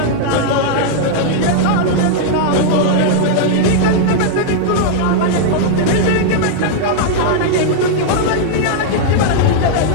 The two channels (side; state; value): both; different; correlation -0.01